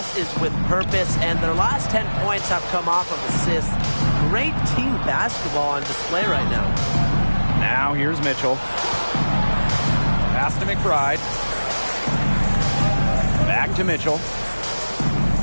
is with purpose, and their last 10 points have come off of assists. Great team basketball on display right now. Now here's Mitchell. Pass to McBride. Back to Mitchell.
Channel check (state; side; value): inverted; both; correlation -1.00